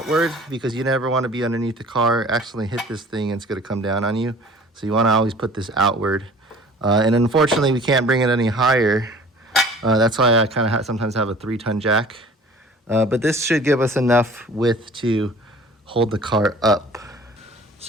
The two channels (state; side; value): normal; both; correlation 0.48